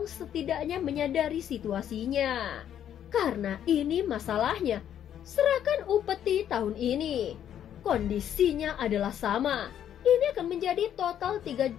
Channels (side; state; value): right; quieter; 10.0 dB